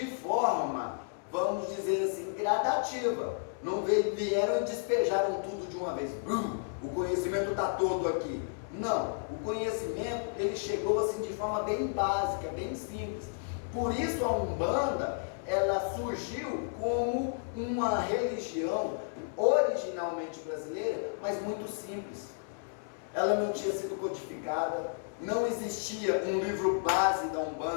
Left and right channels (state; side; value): silent; right; 56 dB below the other